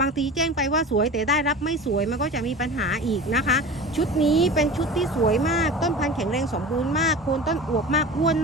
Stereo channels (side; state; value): both; normal; correlation 0.34